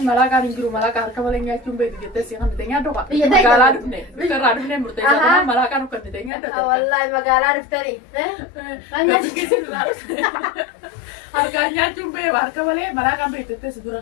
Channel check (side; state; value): right; drops out; at 6.3 s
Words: malaakaan hin jiru malaakaa harka malee nyaachuun beeku jettee si kan bitee nyaadhu qaba. Magaalaa dhufne bitarraa dhufne murteessaa malaakaan uffannitee nyaadhu. Wallahi magaalaa dhuftanii. Gabbisiisin harkaan nyaachuun beeku harka malee malaakaan beeku jettee si dura